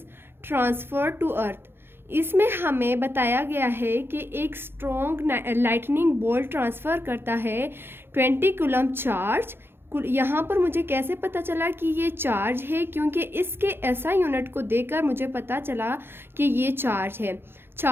transferred to earth. इसमें हमें बताया गया है कि एक स्ट्रॉन्ग लाइटनिंग बोल्ट ट्रांसफ़र करता है 20 कूलम चार्ज। यहाँ पर मुझे कैसे पता चला कि ये चार्ज है, क्योंकि इसके एसआई यूनिट को देखकर मुझे पता चला कि ये चार्ज है।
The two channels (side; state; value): left; late; 0.11 ms